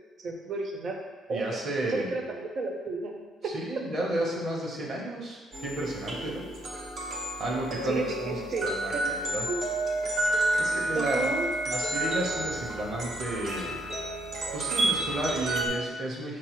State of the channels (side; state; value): both; normal; correlation 0.73